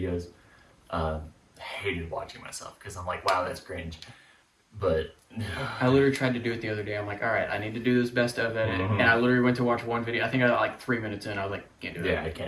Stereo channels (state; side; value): identical; both; correlation 1.00